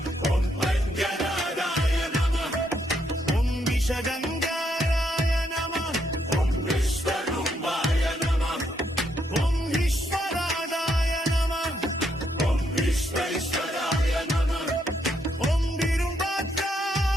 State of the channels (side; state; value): both; normal; correlation 0.76